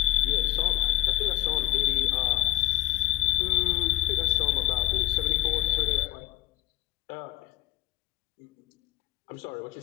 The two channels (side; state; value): right; quieter; 15.3 dB